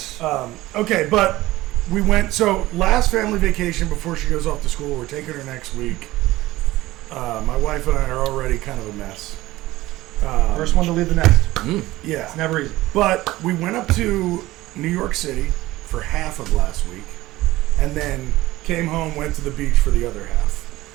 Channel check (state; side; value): quieter; left; 17.4 dB